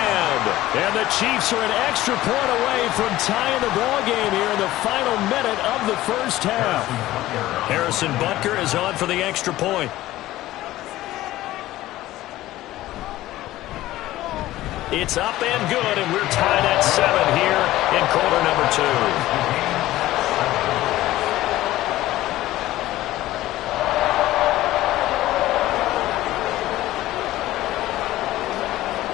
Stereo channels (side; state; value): right; quieter; 15.8 dB